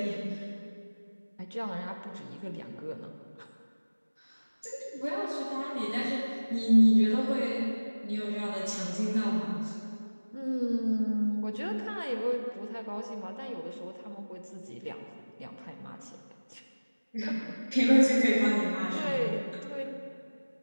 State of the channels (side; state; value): both; inverted; correlation -1.00